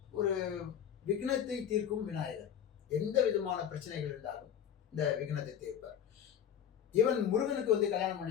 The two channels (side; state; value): right; quieter; 9.1 dB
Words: ஒரு விக்னத்தை தீர்க்கும் விநாயகர். எந்த விதமான பிரச்சனைகள் இருந்தாலும் இந்த விக்னத்தை தீர்ப்பார். இவன் முருகனுக்கு கல்யாணம்